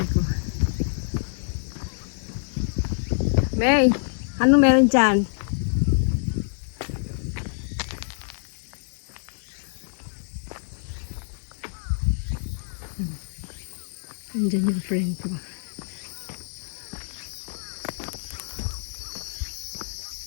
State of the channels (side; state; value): right; silent; digital silence